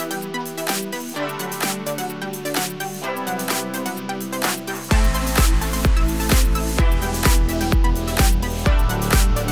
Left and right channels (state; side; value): identical; both; correlation 1.00